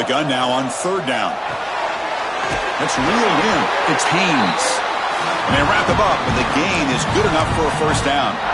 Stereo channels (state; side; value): identical; both; correlation 1.00